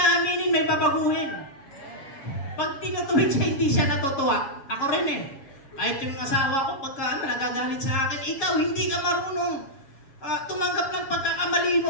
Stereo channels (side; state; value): right; late; 7.1 ms